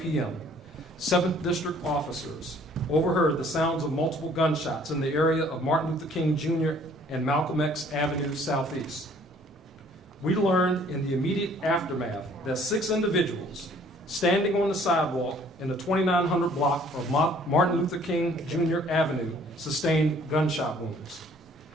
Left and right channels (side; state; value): both; normal; correlation 0.58